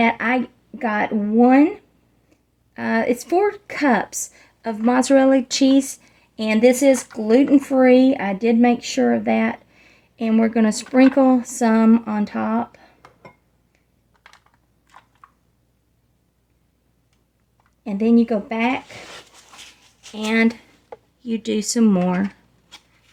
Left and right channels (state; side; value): identical; both; correlation 1.00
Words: I got it's 4 cups of mozzarella cheese, and this is gluten-free. I did make sure of that. And we're going to sprinkle some on top. And then you go back and you do some more